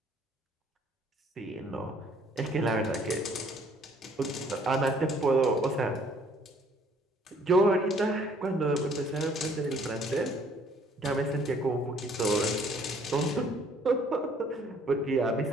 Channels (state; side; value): normal; both; correlation 0.60